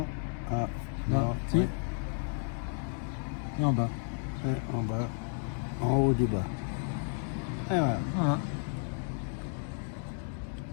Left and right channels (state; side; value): silent; right; 56 dB below the other